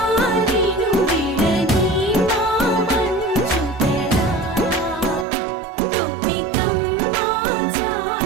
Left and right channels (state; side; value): drops out; left; at 5.2 s